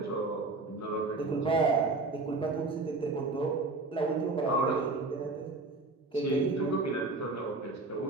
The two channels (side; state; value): left; quieter; 3.4 dB